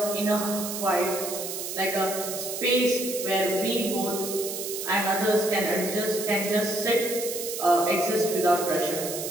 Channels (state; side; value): noise; right; hiss, 6 dB below the sound